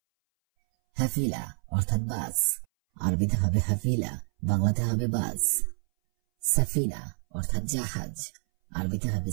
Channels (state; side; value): silent; left; 58 dB below the other